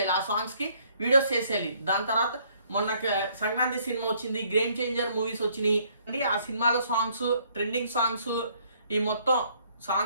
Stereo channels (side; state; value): both; inverted; correlation -0.65